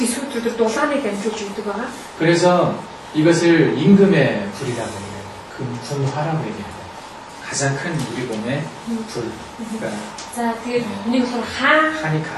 дулааныг дамжуулж өгдөг байгаа. 그래서 이것을 임금의 불이라고 얘기해요. 금풍화라고 얘기해요. 가장 큰 우리 몸의 불. 그러니까 За тэгээд нэг болохоор 하니까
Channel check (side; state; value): both; identical; correlation 1.00